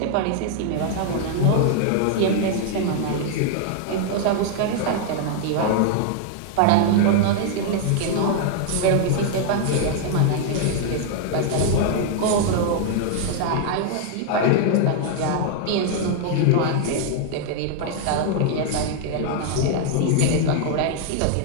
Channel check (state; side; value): different; both; correlation 0.00